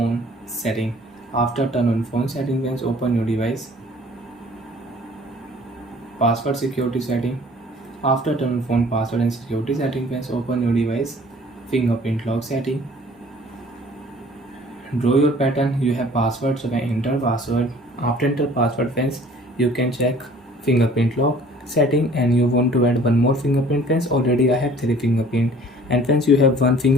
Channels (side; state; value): both; normal; correlation 0.52